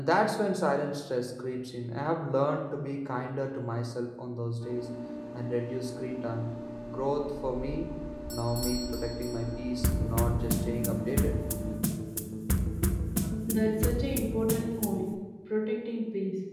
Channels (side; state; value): both; identical; correlation 1.00